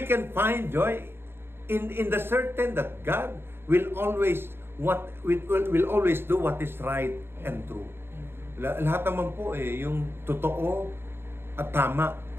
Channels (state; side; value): late; left; 0.11 ms